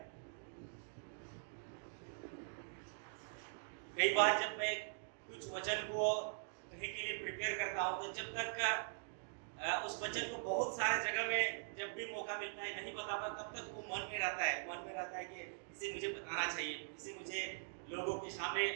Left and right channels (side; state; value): left; silent; digital silence